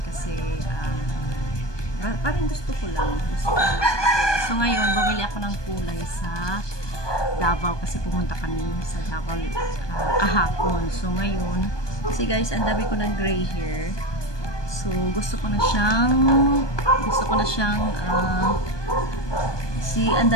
kasi parang gusto ko lang magkulay. So ngayon, bumili ako ng kulay sa Davao kasi pumunta kami sa Davao kahapon. So ngayon, kasi guys, ang dami ko ng gray hair. So gusto ko na siyang ang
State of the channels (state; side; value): late; right; 1.2 ms